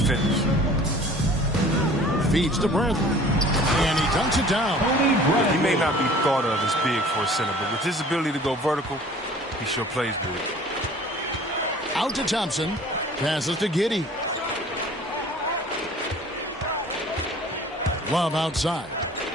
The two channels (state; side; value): normal; both; correlation 0.48